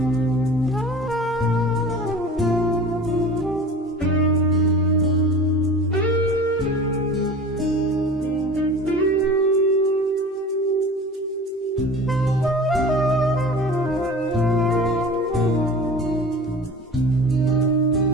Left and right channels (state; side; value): normal; both; correlation 0.38